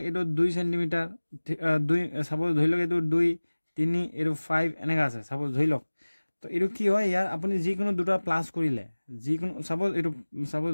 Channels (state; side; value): inverted; both; correlation -1.00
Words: এইটো 2 সেণ্টিমিটাৰ, সাপোজ ধৰি লওক এইটো 2, 3, এইটো 5 এনেকা আছে সাপোজ ধৰি লওক। তো এইটো কি হয়, ইয়াৰ আপুনি যিকোনো দুটা প্লাছ কৰিলে, যিকোনো সাপোজ